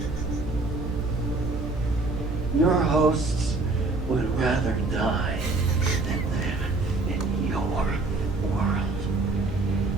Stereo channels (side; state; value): left; quieter; 3.3 dB